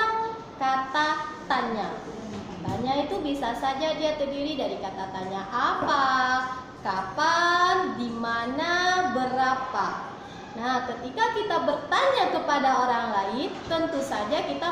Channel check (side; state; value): both; identical; correlation 1.00